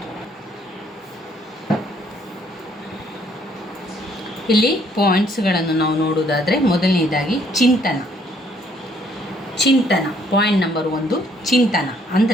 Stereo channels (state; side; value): normal; both; correlation 0.65